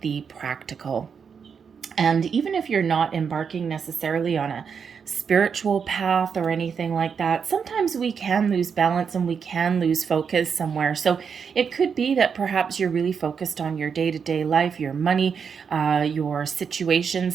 the practical. And even if you're not embarking necessarily on a spiritual path or anything like that, sometimes we can lose balance and we can lose focus somewhere. So it could be that perhaps you're really focused on your day-to-day life, your money, your situations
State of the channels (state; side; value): quieter; left; 6.5 dB